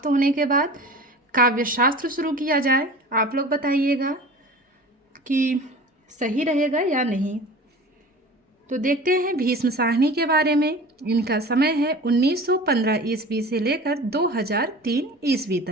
होने के बाद काव्य शास्त्र शुरू किया जाए। आप लोग बताइएगा कि सही रहेगा या नहीं। तो देखते हैं भीष्म साहनी के बारे में। इनका समय है 1915 ईस्वी से लेकर 2003 ईस्वी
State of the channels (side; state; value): both; normal; correlation 0.39